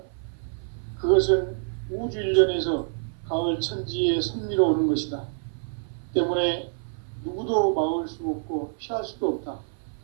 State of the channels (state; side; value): silent; left; 58 dB below the other